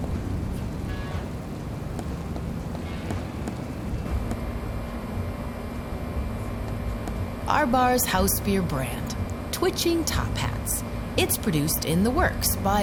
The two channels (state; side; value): identical; both; correlation 1.00